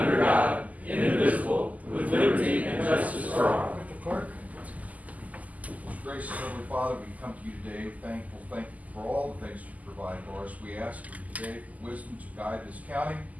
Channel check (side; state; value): left; late; 0.076 ms